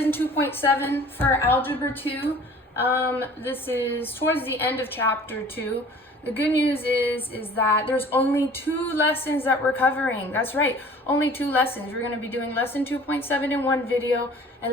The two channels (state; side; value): normal; both; correlation 0.48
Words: 2.7 for Algebra 2. This is towards the end of chapter 2. The good news is that there's only 2 lessons that we're covering. That's right, only 2 lessons. We're going to be doing lesson 2.7 in one video